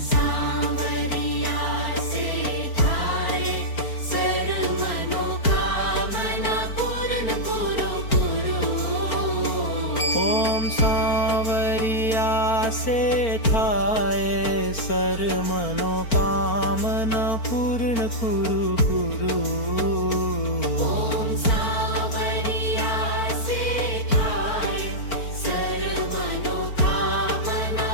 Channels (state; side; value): late; right; 4.4 ms